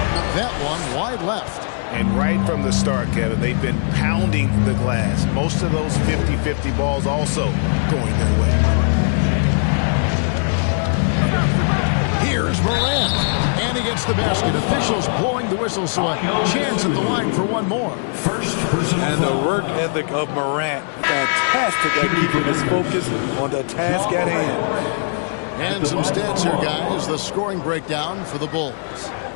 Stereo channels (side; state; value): right; silent; 61 dB below the other